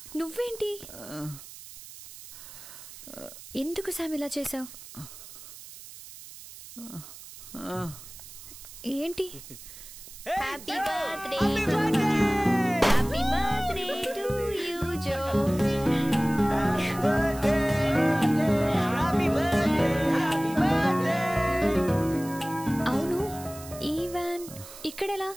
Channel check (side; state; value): right; noise; hiss, 16 dB below the sound